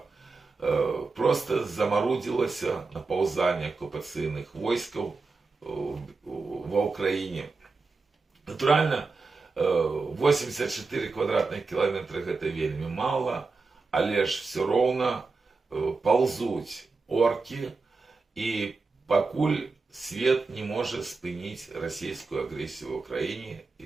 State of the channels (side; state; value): left; quieter; 4.1 dB